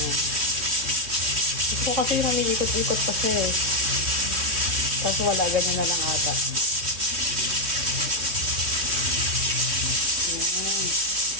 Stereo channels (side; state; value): left; late; 3.1 ms